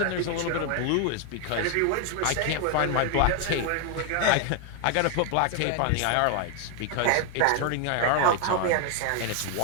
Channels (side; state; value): both; different; correlation 0.01